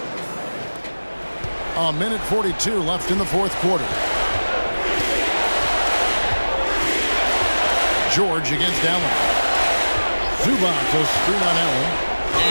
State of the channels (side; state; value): both; inverted; correlation -1.00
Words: A minute 42 left in the fourth quarter. George against Allen. Zubac a screen on Allen.